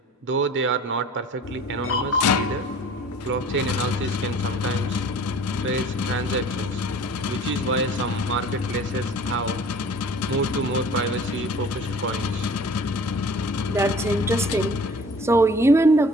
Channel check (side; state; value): both; normal; correlation 0.46